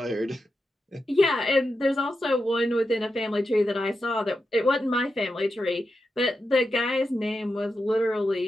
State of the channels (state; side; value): normal; both; correlation 0.88